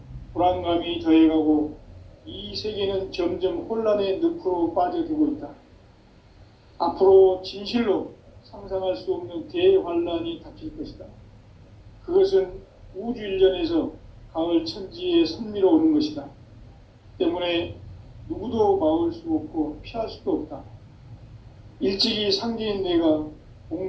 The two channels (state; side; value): identical; both; correlation 1.00